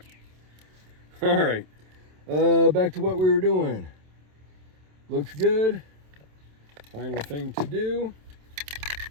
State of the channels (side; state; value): left; late; 27 ms